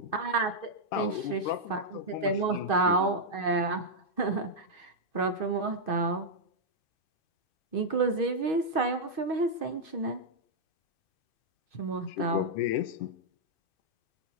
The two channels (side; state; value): right; late; 2.6 ms